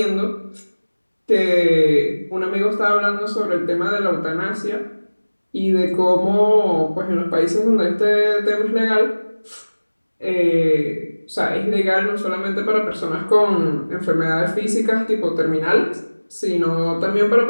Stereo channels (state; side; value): inverted; both; correlation -1.00